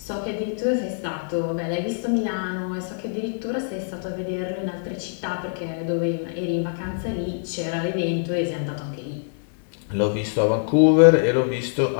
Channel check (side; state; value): right; silent; digital silence